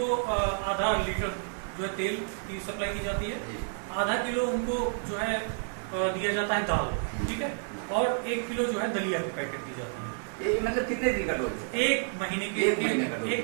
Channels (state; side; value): silent; left; digital silence